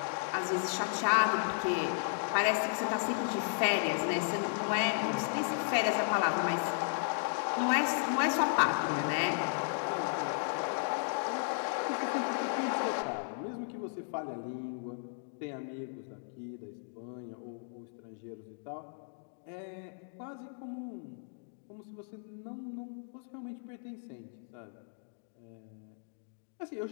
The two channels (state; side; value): silent; right; digital silence